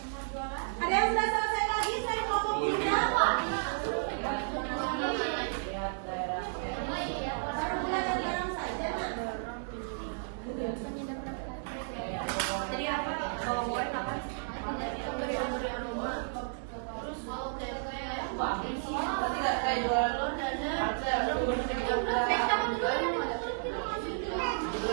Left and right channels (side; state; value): left; silent; digital silence